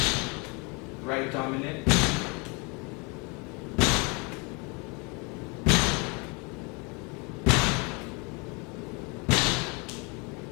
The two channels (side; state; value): right; quieter; 30.3 dB